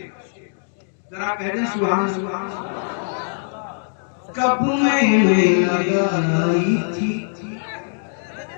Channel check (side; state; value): right; silent; digital silence